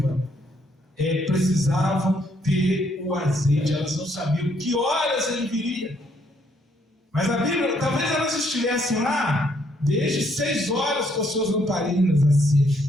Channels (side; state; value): both; normal; correlation 0.70